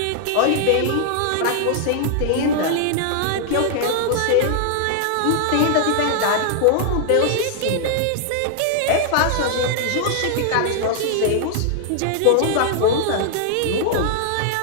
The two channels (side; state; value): both; different; correlation -0.01